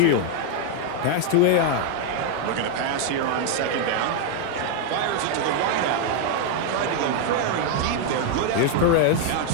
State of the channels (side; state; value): both; different; correlation 0.00